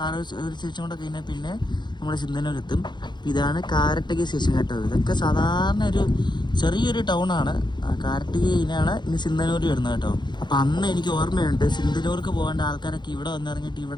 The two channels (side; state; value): right; late; 0.21 ms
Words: ഒരു സ്റ്റേഷൻ കൂടെ കഴിഞ്ഞാൽ പിന്നെ നമ്മൾ സിന്ധനൂരെത്തും. ഇതാണ് കാരട്ടകി സ്റ്റേഷൻ കേട്ടോ. ഇതൊക്കെ സാധാരണ ഒരു ചെറിയൊരു ടൗണാണ്. കാരട്ടകിയിലാണ് ഇനി സിന്ധനൂർ വരുന്നത് കേട്ടോ. അപ്പം അന്ന് എനിക്ക് ഓർമ്മയുണ്ട്, സിന്ധനൂർക്ക് പോകേണ്ട ആൾക്കാരൊക്കെ ഇവിടെ വന്നിറങ്ങിയിട്ട്